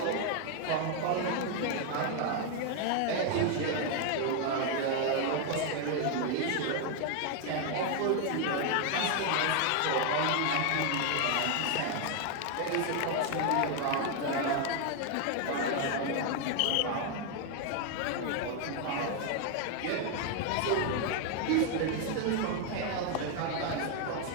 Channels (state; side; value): different; both; correlation 0.01